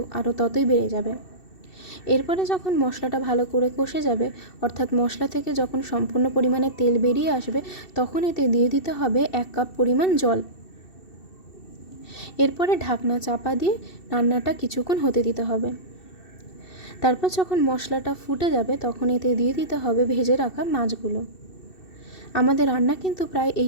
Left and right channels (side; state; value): right; late; 2.7 ms